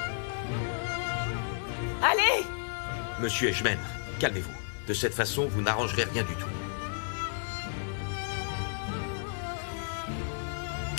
Allez! Monsieur Edgeman, calmez-vous. De cette façon, vous n'arrangerez rien du tout.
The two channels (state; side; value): silent; right; 56 dB below the other